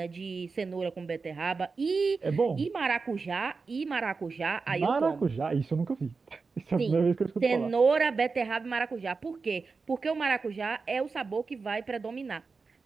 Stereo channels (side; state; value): left; quieter; 4.5 dB